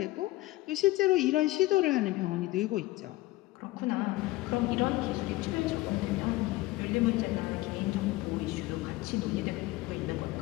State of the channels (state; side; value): quieter; right; 18.7 dB